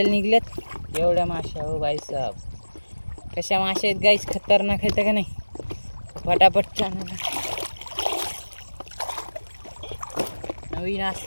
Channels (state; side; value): inverted; both; correlation -1.00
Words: निघल्यात एवढ्या माश्या. हो बाई साहेब, कशा माश्या आहेत गाईच, खतरनाक आहेत का नाही. पटापट चॅनल नवीन